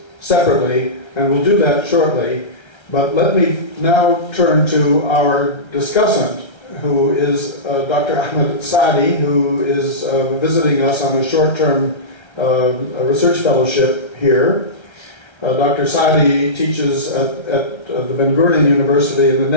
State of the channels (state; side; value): late; right; 1.3 ms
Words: separately, and we'll do that shortly. But let me now turn to our discussant, who is Dr. Ahmed Saadi, who is visiting us on a short-term research fellowship here. Dr. Saadi teaches at the Ben Gurion University in the